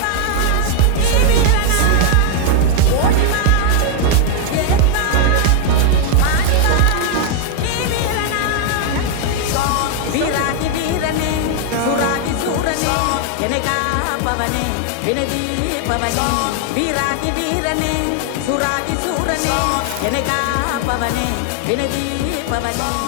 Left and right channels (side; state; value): both; different; correlation 0.00